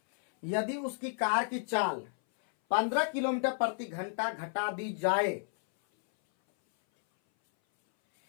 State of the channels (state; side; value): silent; right; 57 dB below the other